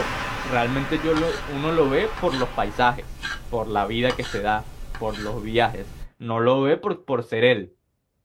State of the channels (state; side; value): identical; both; correlation 1.00